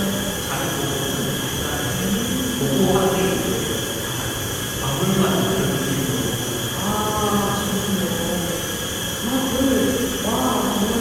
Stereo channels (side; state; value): both; identical; correlation 1.00